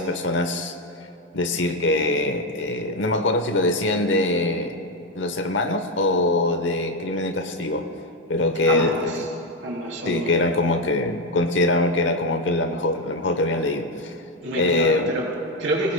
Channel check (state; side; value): normal; both; correlation 0.08